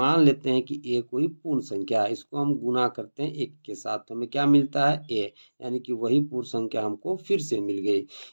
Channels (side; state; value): both; inverted; correlation -1.00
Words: लेते हैं कि ए कोई पूर्ण संख्या है, इसको हम गुना करते हैं 1 के साथ तो हमें क्या मिलता है, ए, यानी कि वही पूर्ण संख्या हमको फिर से मिल गई,